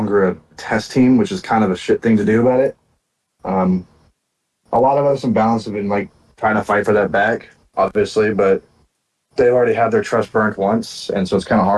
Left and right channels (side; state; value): both; identical; correlation 1.00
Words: a test team, which is kind of a shit thing to do about it. Um, a lot of us in balance have been like trying to fight for that back, obviously, but they've already had their trust burnt once, and so it's kind of